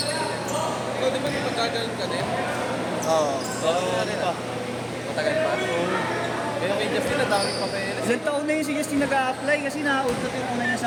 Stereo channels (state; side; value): identical; both; correlation 1.00